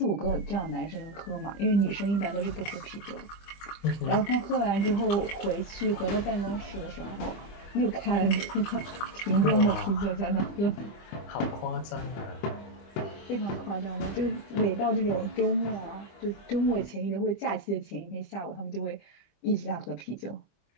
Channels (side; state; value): right; late; 25 ms